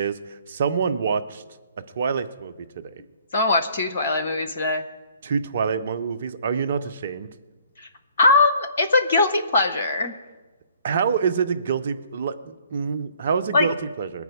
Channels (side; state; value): both; inverted; correlation -0.58